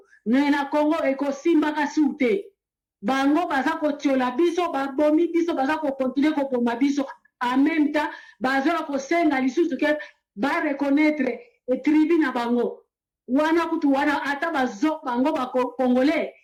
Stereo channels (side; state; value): both; identical; correlation 1.00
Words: me na Congo ekosimbaka su te bango baza kotiola biso babomi biso baza kokontinue koboma biso en même temps bazola kosenga lisusu ke ba reconnaître tribu na bango wana kutu wana ata bazo bango ba congolais